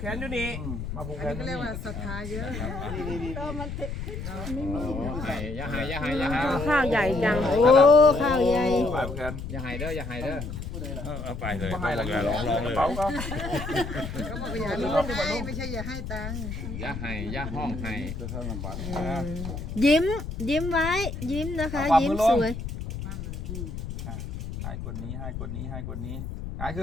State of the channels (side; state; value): left; noise; rumble, 6 dB below the sound